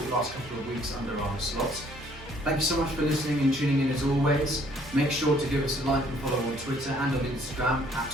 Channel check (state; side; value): normal; both; correlation 0.61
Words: last couple of weeks under our slot. Thank you so much for listening and tuning in as always. Make sure to give us a like and follow on Twitter and on Instagram